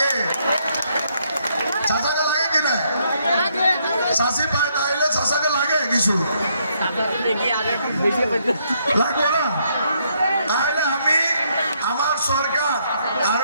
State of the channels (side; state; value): both; inverted; correlation -0.73